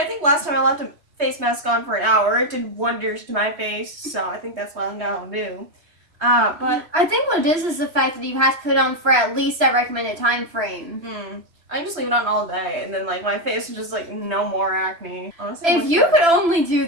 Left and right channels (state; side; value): late; left; 3.0 ms